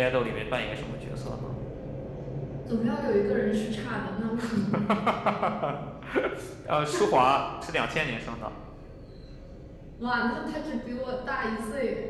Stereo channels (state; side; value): identical; both; correlation 1.00